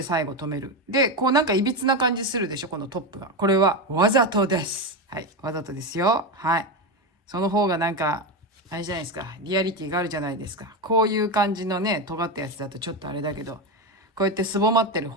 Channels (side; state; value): both; normal; correlation 0.14